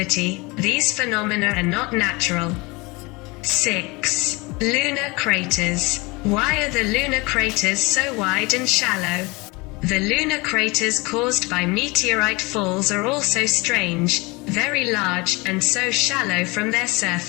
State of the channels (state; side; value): quieter; right; 25.5 dB